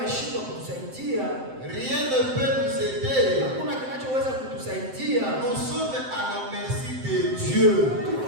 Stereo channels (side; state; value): left; late; 7.7 ms